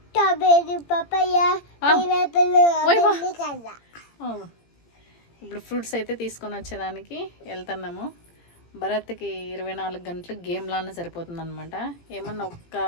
ఇప్పుడు ఫ్రూట్స్ అయితే తీసుకొని వచ్చేదానికి వెళ్తున్నాము. భరత్కి 24 గంటలు గేమ్ లానే సరిపోతుంది అనమాట. ఏమన్నా ఒక్క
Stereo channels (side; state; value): right; late; 17 ms